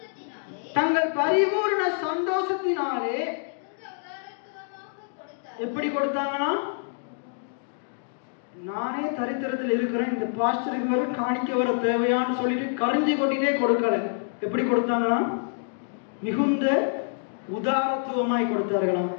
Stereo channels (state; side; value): silent; right; digital silence